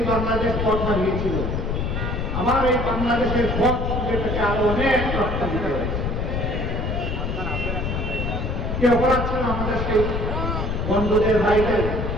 বাংলাদেশ পথ হারিয়েছিল। আবার এই বাংলাদেশের পথ যেটাকে আরো অনেক রক্ষা দিতে হয়েছে। কি অপরাধ ছিল আমাদের সেই বন্ধুদের ভাইদের?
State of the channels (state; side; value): noise; left; rumble, 2 dB below the sound